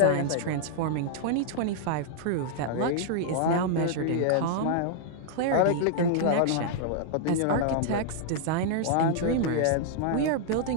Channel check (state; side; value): different; both; correlation -0.01